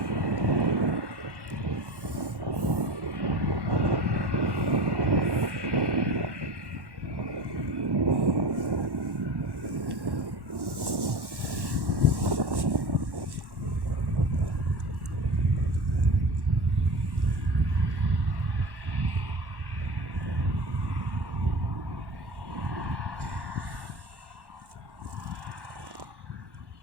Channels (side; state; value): left; late; 1.1 ms